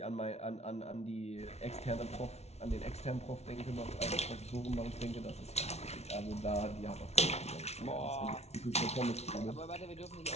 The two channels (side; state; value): right; late; 0.31 ms